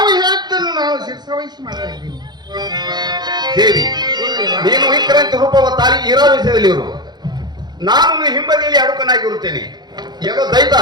ಹೇಳ್ತನ್ನು ನಾವು ಶಿರಸಾವಹಿಸಿ ಮಾಡ್ತಾ ಇದ್ದೀವಿ ದೇವಿ. ನೀನು ವಿಕ್ರಾಂತಿ ರೂಪವ ತಾಳಿ ಇರೋ ವಿಷಯದಲ್ಲಿ ಇರು. ನಾನು ಹಿಂಬದಿಯಲ್ಲಿ ಅಡುಕನಾಗಿರುತ್ತೇನೆ. ಏನೋ ದೈತ,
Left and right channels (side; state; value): left; late; 0.21 ms